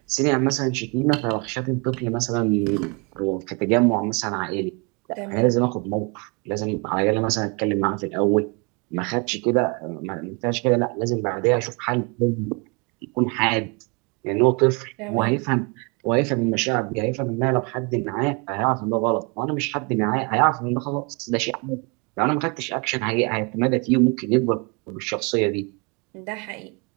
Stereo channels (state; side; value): quieter; left; 32.0 dB